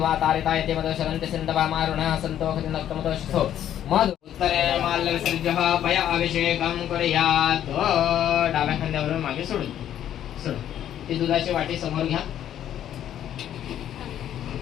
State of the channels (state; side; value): quieter; right; 10.8 dB